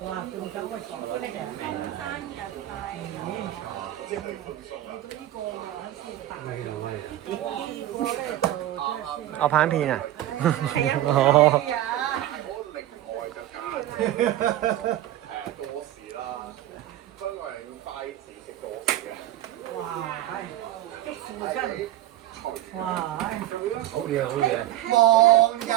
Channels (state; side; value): quieter; left; 13.7 dB